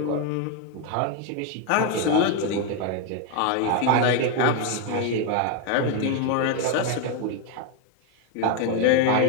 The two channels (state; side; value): different; both; correlation 0.02